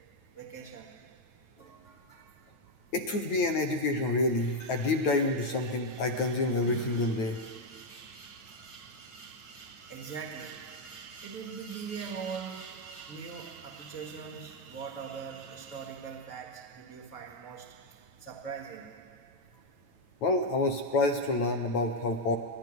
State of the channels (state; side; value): late; right; 9.2 ms